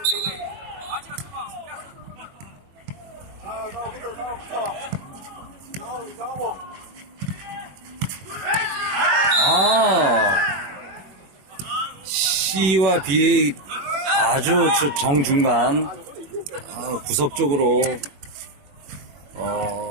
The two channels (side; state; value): left; late; 21 ms